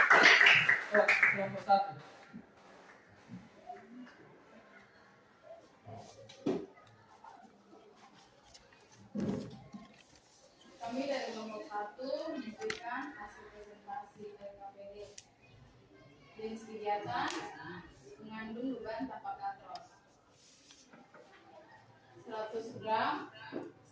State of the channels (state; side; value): identical; both; correlation 1.00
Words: Kelompok 1. Kami dari kelompok 1 memberikan hasil presentasi LKPD. Jenis kegiatan mengandung beban tanpa katrol. 100 gram